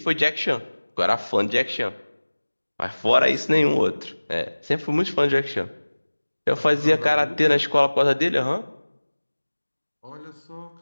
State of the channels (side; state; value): both; inverted; correlation -1.00